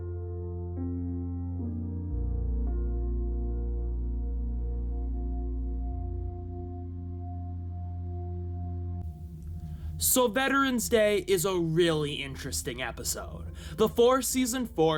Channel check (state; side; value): identical; both; correlation 1.00